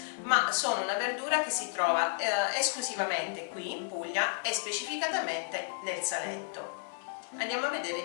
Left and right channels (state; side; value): silent; right; 56 dB below the other